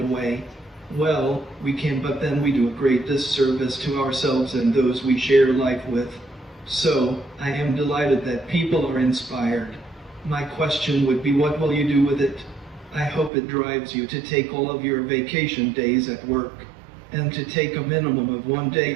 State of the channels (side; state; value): left; drops out; at 13.3 s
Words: away. Well, we can, but then we do a great disservice to ourselves and those we share life with. So, I am delighted that people are inspired. My question would be, what will you do with it? I hope it drives you to take all of your vacation days at work, and to take a minimum of 1